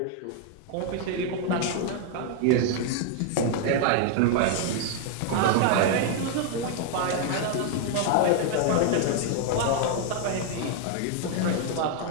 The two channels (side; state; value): both; different; correlation 0.00